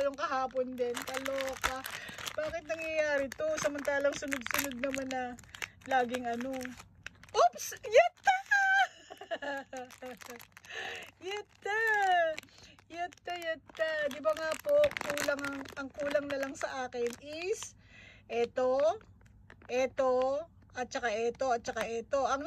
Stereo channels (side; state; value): both; identical; correlation 1.00